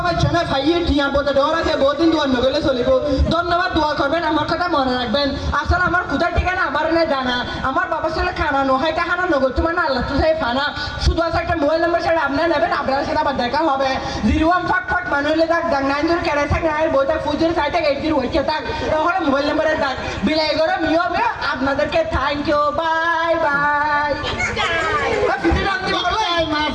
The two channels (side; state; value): both; identical; correlation 1.00